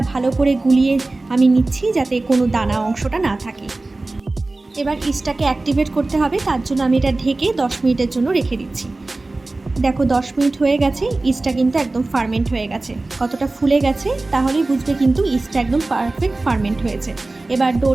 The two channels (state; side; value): quieter; left; 3.1 dB